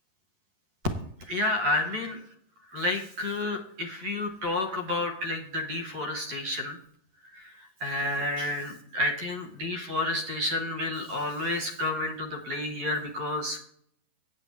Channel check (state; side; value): late; left; 11 ms